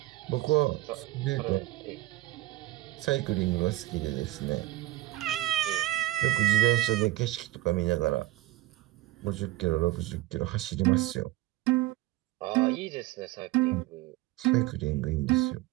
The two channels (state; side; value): quieter; left; 16.7 dB